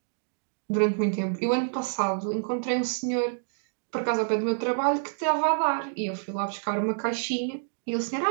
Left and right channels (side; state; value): left; silent; digital silence